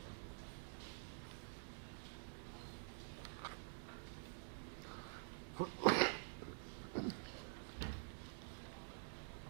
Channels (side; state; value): left; silent; digital silence